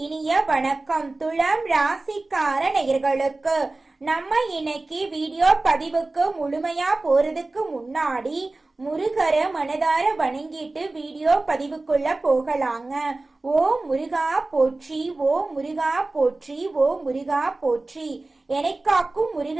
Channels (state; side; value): quieter; left; 3.1 dB